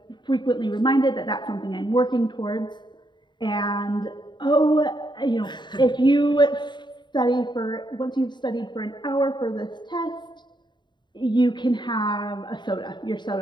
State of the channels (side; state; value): right; late; 0.22 ms